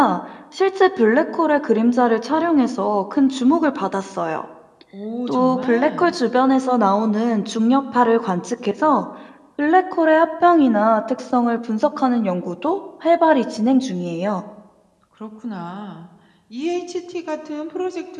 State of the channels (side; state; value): both; identical; correlation 1.00